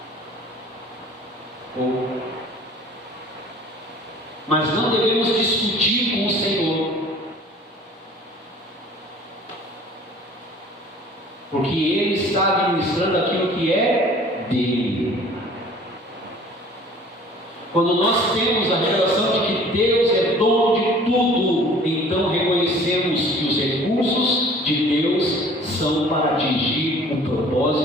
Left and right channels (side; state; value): both; normal; correlation 0.49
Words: pouco. Mas não devemos discutir com o Senhor, porque Ele está administrando aquilo que é dele. Quando nós temos a revelação de que Deus é dono de tudo, então reconhecemos que os recursos de Deus são para atingir o